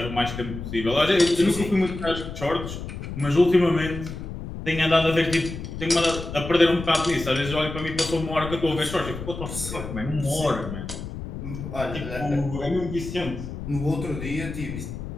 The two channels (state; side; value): noise; left; rumble, 8 dB below the sound